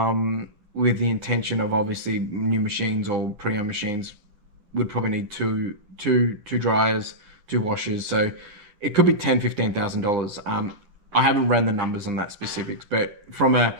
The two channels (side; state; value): left; late; 9.8 ms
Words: with the intention of obviously new machines or pre-owned machines would probably need two dryers, two washers. So it could be $10,000-$15,000. I haven't ran the numbers on that specifics, but from a